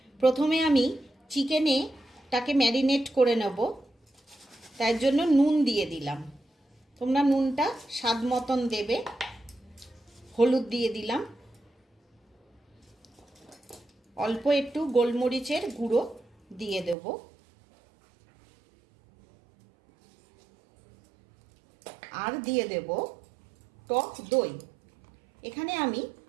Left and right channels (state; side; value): drops out; left; at 16.9 s